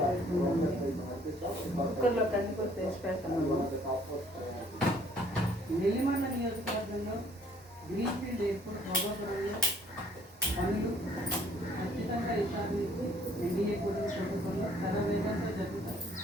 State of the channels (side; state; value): both; normal; correlation 0.60